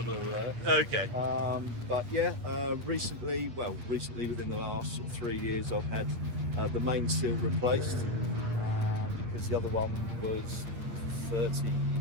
Okay. But yeah, recently within the last sort of 3 years, I've had the main seal replaced because the other one was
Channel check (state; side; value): late; left; 8.7 ms